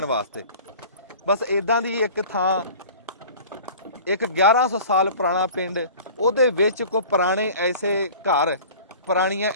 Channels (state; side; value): inverted; both; correlation -0.42